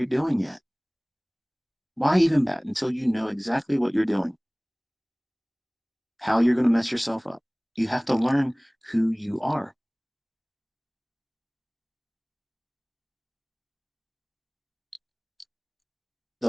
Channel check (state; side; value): identical; both; correlation 1.00